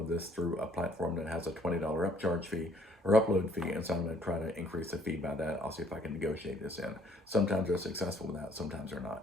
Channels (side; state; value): both; normal; correlation 0.62